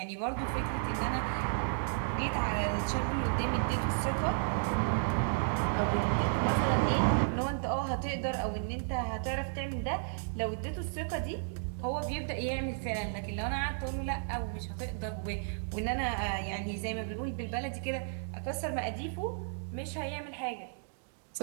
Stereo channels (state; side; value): silent; left; digital silence